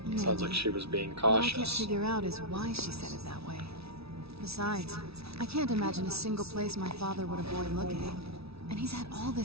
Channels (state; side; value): late; left; 0.77 ms